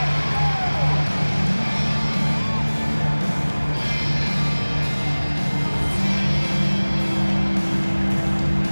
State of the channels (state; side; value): inverted; both; correlation -1.00